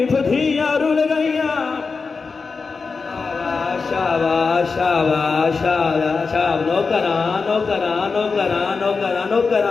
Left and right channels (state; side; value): quieter; right; 4.7 dB